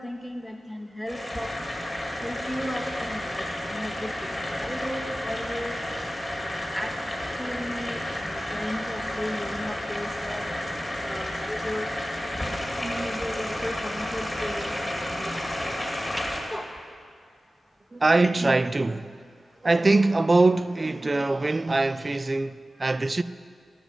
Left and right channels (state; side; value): normal; both; correlation 0.96